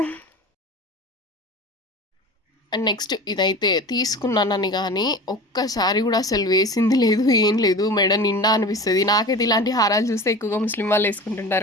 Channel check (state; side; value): normal; both; correlation 0.34